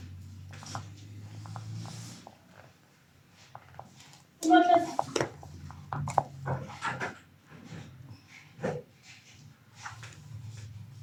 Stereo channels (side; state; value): both; identical; correlation 1.00